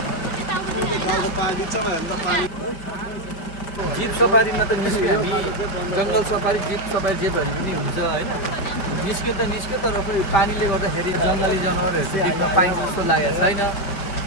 जिप सफारीमा त निस्क्यो हामी। जङ्गल सफारी, जिप सफारी जे भने पनि हुन्छ होइन? निस्क्यो तर पनि पानीले गर्दाखेरि जङ्गली जनावरहरू चाहिँ हामीमा पाइन्छ जस्तो लागेको छैन।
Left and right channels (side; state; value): right; late; 5.1 ms